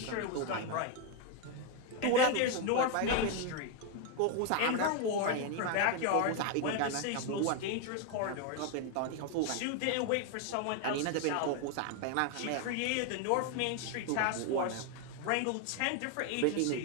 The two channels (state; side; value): different; both; correlation 0.01